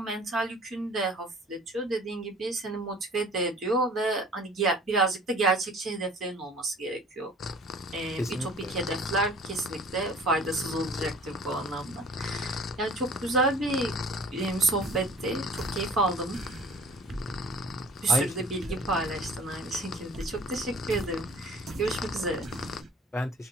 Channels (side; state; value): both; normal; correlation 0.48